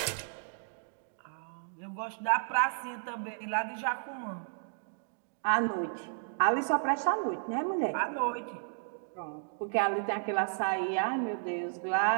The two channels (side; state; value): left; silent; digital silence